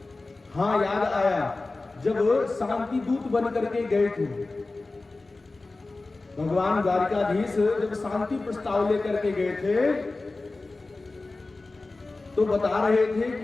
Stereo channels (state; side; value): quieter; right; 3.3 dB